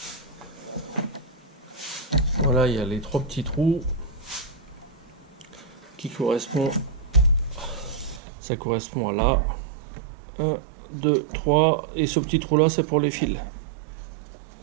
voilà, il y a les 3 petits trous qui correspondent. Ça correspond à là. 1, 2, 3. Et ce petit trou là, c'est pour les fils.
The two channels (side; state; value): left; drops out; at 8.2 s